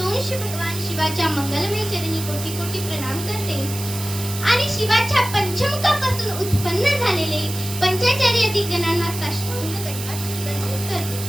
भगवान शिवाच्या मंगलमय चरणी कोटी कोटी प्रणाम करते आणि शिवाच्या पंचमुखापासून उत्पन्न झालेले पंचाचार्य दिग्गणांना साष्टांग दंडवत करते.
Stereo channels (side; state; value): right; noise; hiss, 9 dB below the sound